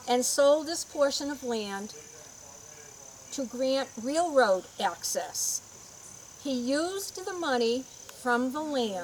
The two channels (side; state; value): both; identical; correlation 1.00